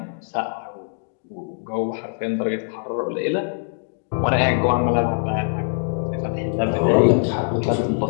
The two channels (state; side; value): silent; right; digital silence